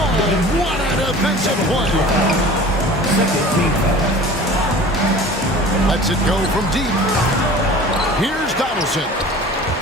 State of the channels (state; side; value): normal; both; correlation 0.42